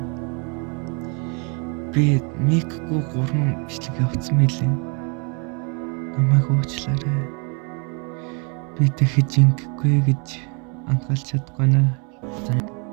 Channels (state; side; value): quieter; left; 35.1 dB